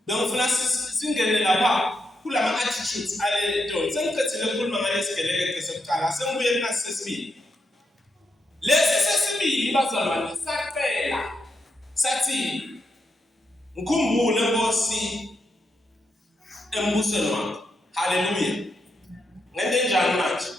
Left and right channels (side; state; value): both; normal; correlation 0.83